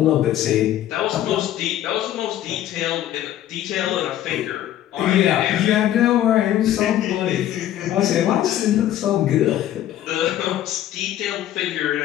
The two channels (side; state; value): right; quieter; 12.3 dB